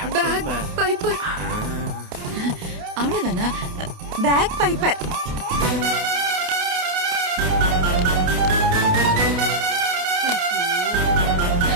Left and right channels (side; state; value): left; late; 28 ms